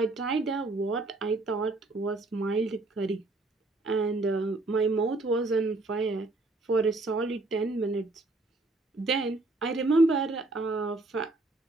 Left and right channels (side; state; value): left; quieter; 3.1 dB